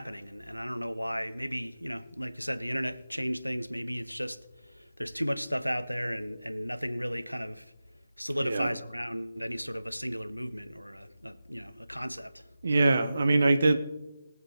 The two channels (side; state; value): both; inverted; correlation -0.94